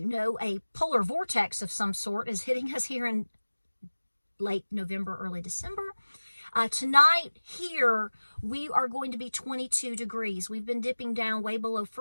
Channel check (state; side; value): inverted; both; correlation -1.00